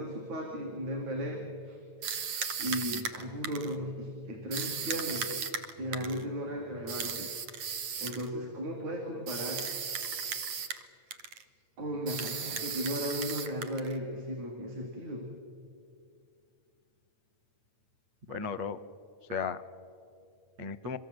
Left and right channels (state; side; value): late; left; 8.9 ms